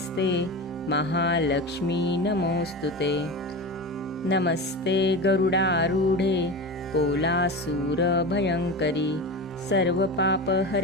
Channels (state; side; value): normal; both; correlation 0.26